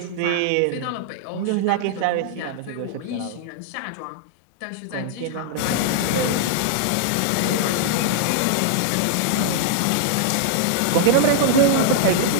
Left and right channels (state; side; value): different; both; correlation -0.01